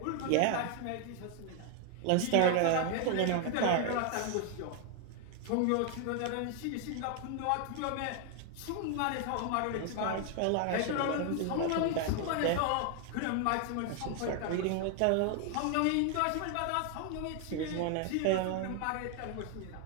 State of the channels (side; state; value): both; different; correlation 0.00